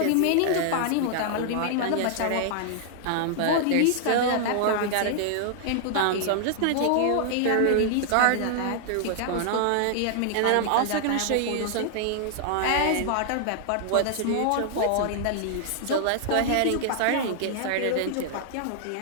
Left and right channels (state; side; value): different; both; correlation -0.01